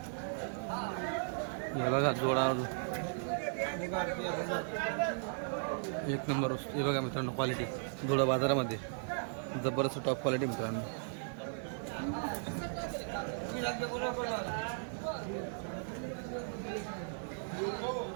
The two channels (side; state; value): left; silent; digital silence